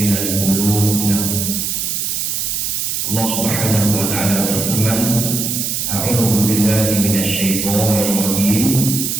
Allah Subhanahu wa taala berfirman, a'udzu billahi minasyaitonir rajim,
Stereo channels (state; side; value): noise; right; hiss, 1 dB below the sound